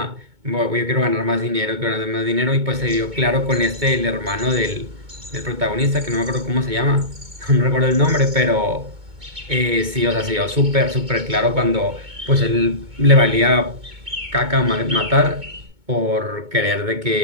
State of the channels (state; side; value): late; left; 2.2 ms